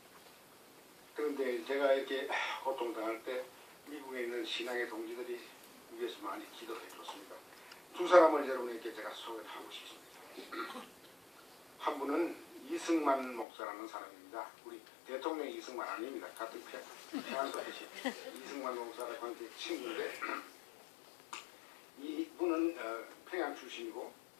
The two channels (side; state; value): right; drops out; at 13.5 s